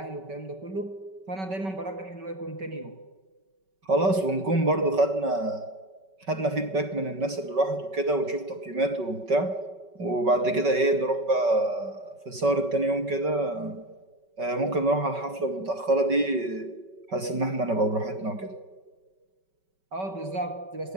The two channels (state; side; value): late; left; 5.2 ms